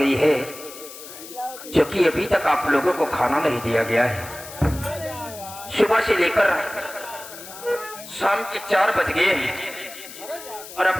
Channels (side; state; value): left; noise; hiss, 14 dB below the sound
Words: है जो कि अभी तक आप लोगों को खाना नहीं दिया गया है? सुबह से लेकर शाम के 4 बज गए हैं और